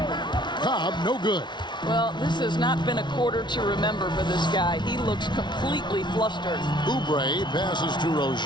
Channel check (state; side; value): late; right; 0.22 ms